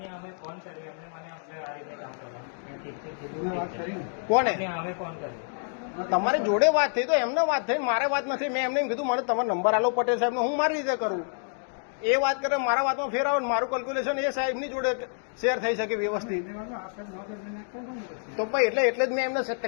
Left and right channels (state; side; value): silent; right; digital silence